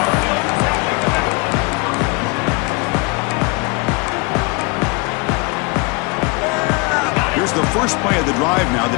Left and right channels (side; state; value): right; quieter; 28.9 dB